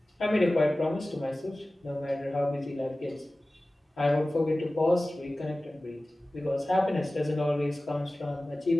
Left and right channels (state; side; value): normal; both; correlation 0.97